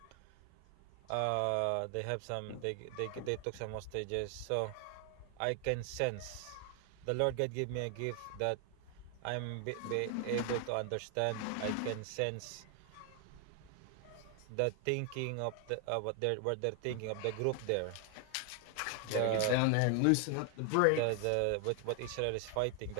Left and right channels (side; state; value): both; different; correlation 0.00